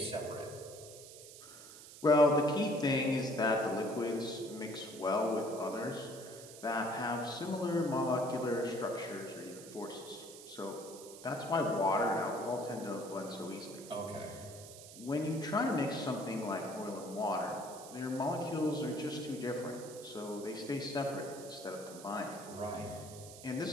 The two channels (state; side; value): noise; right; hiss, 15 dB below the sound